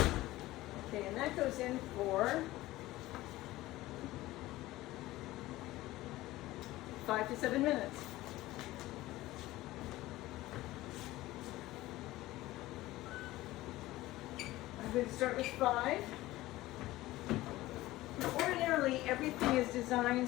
Okay, and that goes in for 5 to 7 minutes. I'm going to start with 5. Ordinarily, everything is designed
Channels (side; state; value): right; quieter; 17.3 dB